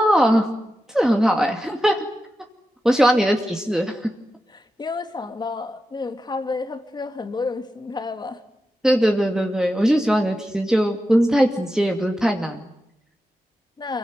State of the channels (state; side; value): normal; both; correlation 0.90